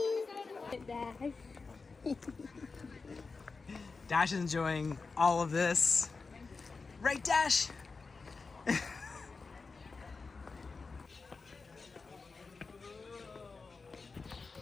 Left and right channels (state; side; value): quieter; right; 4.3 dB